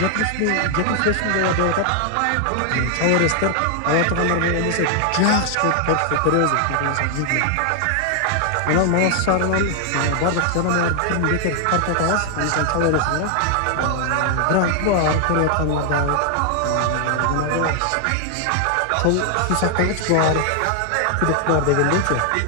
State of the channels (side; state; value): both; different; correlation 0.00